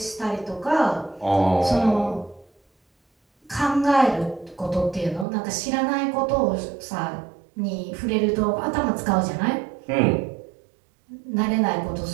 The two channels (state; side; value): drops out; left; at 5.2 s